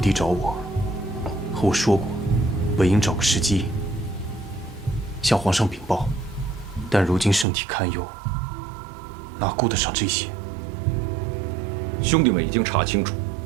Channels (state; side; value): drops out; left; at 7.5 s